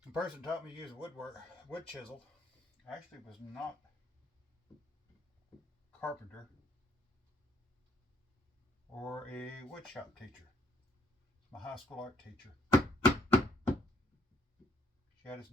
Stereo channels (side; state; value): both; normal; correlation 0.67